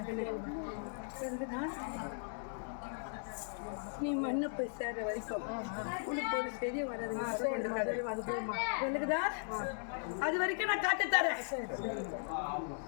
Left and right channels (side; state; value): right; silent; digital silence